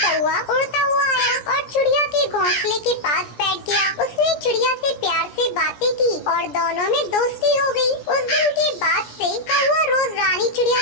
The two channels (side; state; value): right; late; 17 ms